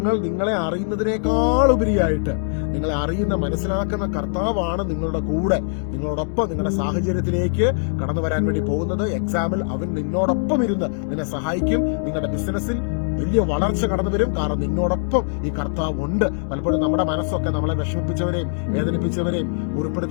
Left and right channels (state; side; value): silent; right; digital silence